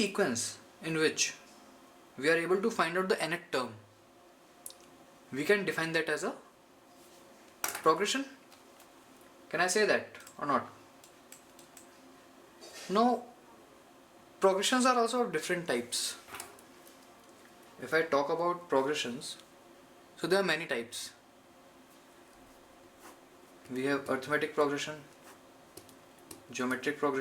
in which we are able to find out the nth term, we can define that as a progression. Can I say that or not? Now, progressions are also of different types. If I talk about progressions, so there are many types. We have arithmetic progression, geometric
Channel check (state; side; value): identical; both; correlation 1.00